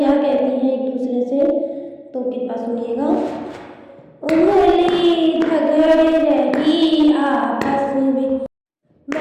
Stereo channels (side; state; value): both; identical; correlation 1.00